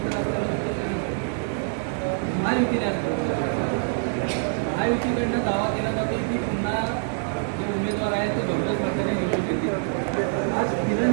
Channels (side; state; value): left; silent; 62 dB below the other